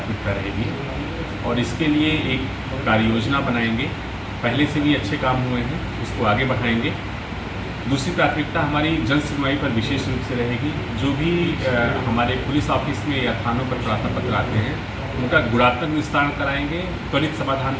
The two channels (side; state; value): both; identical; correlation 1.00